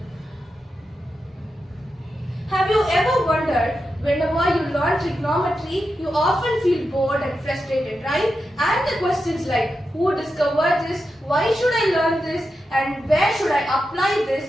Have you ever wondered, whenever you learn trigonometry, you often feel bored and frustrated, right? And the questions like, who discovered this, why should I learn this, and where should I apply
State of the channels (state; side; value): normal; both; correlation 0.88